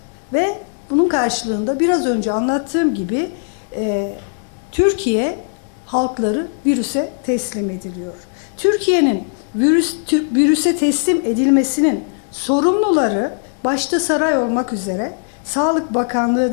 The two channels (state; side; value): silent; right; 67 dB below the other